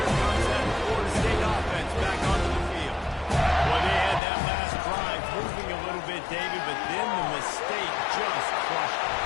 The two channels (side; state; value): right; drops out; at 4.2 s